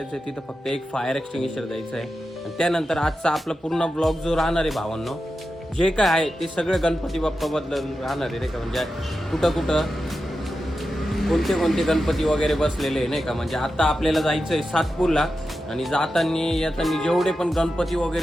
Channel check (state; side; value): normal; both; correlation 0.91